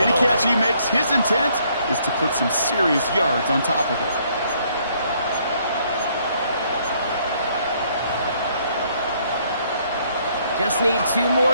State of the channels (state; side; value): inverted; both; correlation -0.67